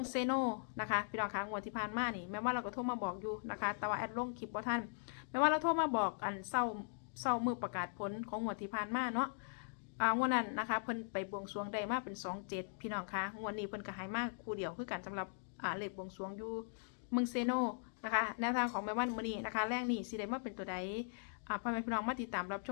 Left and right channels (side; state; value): right; silent; digital silence